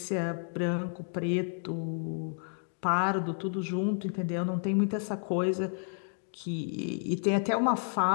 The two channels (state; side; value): silent; right; 57 dB below the other